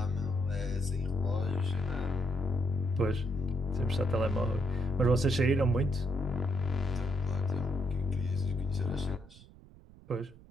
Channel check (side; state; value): right; noise; rumble, 22 dB below the sound